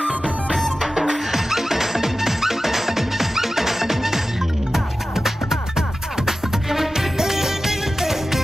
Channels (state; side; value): normal; both; correlation 0.94